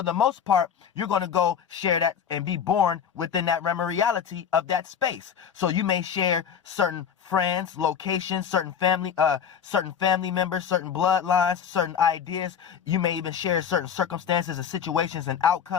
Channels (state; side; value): quieter; right; 7.9 dB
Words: the most part, you're going to go share that and be born within that realm of reality of that space. So you may share certain friends, locations, certain family members, certain bloodlines, certain ideas. You may even share certain circumstances and situations and